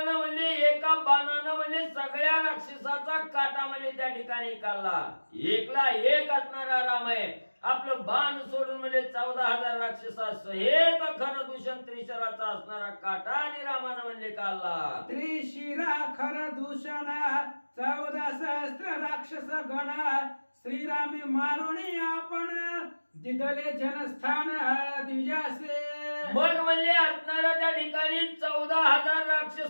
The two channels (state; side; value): inverted; both; correlation -1.00